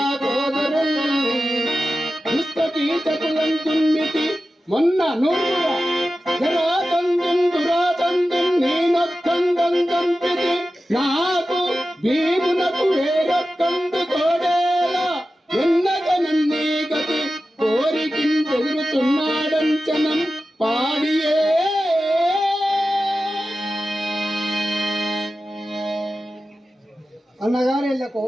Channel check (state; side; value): normal; both; correlation 0.93